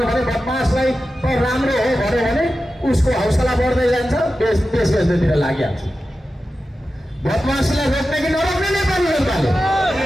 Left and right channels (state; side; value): normal; both; correlation 0.92